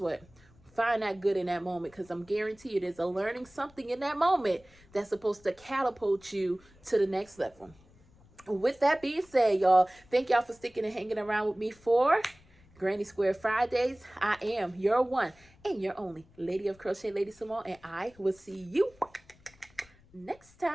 Find that good in that moment, because I'm guaranteed there's a learning something in that moment that's supposed to catapult you to the next level. With that being said, y'all, thank y'all for sticking and hanging around with me for Granny Square Fridays. I am your one and your only Lady of Crochet, LadySamoan, and I will see you next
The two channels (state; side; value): noise; left; rumble, 28 dB below the sound